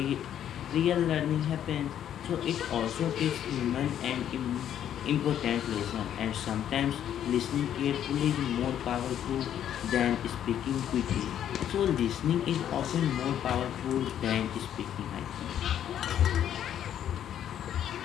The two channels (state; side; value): quieter; right; 10.2 dB